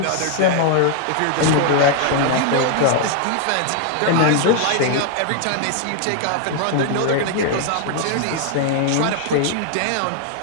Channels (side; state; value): both; different; correlation 0.00